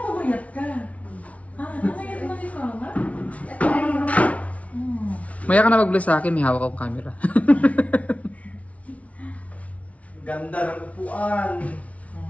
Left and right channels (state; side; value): late; right; 0.066 ms